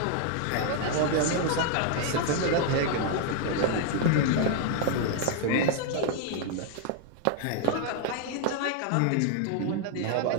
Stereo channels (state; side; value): different; both; correlation 0.00